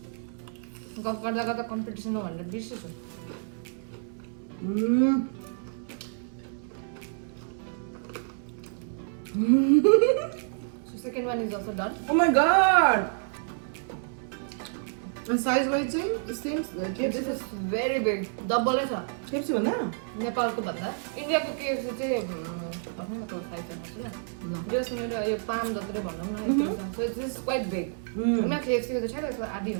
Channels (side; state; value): left; silent; 58 dB below the other